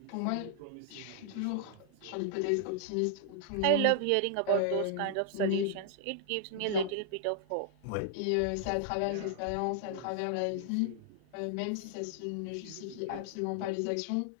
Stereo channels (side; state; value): both; different; correlation -0.01